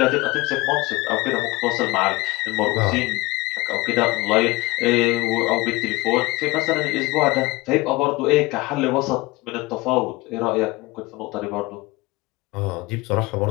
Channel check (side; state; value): right; quieter; 21.6 dB